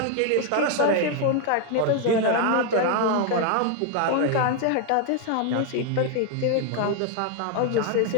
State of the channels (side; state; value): both; different; correlation 0.01